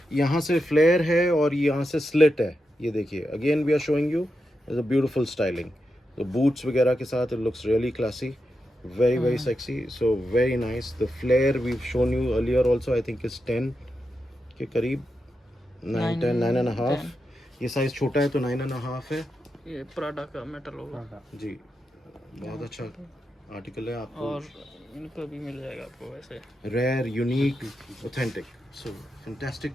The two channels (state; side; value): normal; both; correlation 0.87